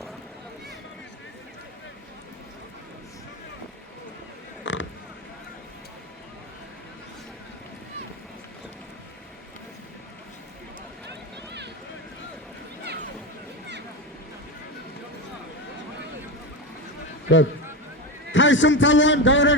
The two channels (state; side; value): normal; both; correlation 0.17